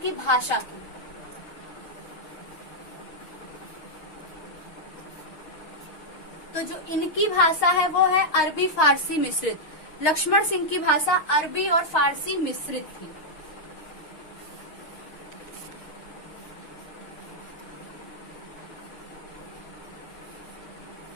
भाषा की। तो जो इनकी भाषा है वो है अरबी फारसी मिश्रित। लक्ष्मण सिंह की भाषा अरबी और फारसी मिश्रित थी।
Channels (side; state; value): right; late; 6.4 ms